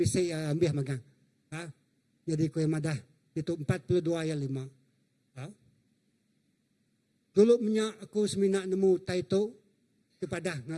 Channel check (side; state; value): both; identical; correlation 1.00